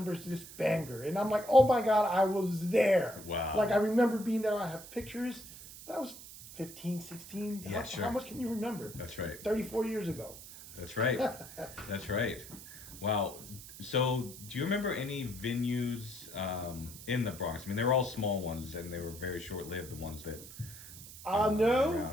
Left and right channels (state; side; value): noise; right; hiss, 15 dB below the sound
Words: this banger? And I'm like, oh my God, I was there. Wow. Like, I remember being there. I have pictures, but I was 15, 16. Yeah, sure. How much can you remember? That's right. 34 years ago. That's right. That's right. Wow. So, do you remember any venues in the Bronx? I mean, they were all small ones, and they were very short-lived, the ones that... No,